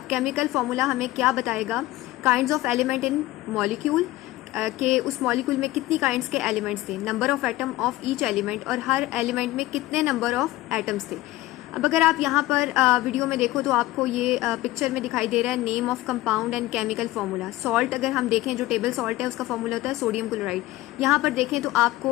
केमिकल फार्मूला हमें क्या बताएगा? Kinds of element in molecule के उस मॉलिक्यूल में कितनी काइंड्स के एलिमेंट्स थे, number of atom of each element और हर एलिमेंट में कितने नंबर ऑफ एटम्स थे. अब अगर आप यहाँ पर वीडियो में देखो तो आपको ये पिक्चर में दिखाई दे रहा है name of compound and chemical formula. Salt अगर हम देखें जो टेबल सॉल्ट है उसका फार्मूला होता है सोडियम क्लोराइड. यहाँ पर देखें तो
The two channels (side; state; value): right; quieter; 17.3 dB